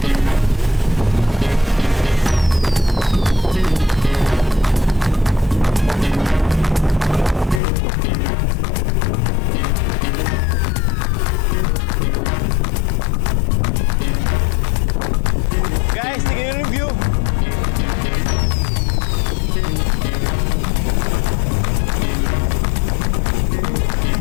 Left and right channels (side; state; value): right; drops out; at 7.6 s